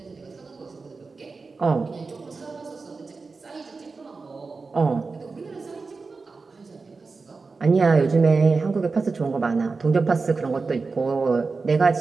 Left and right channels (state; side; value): quieter; left; 4.2 dB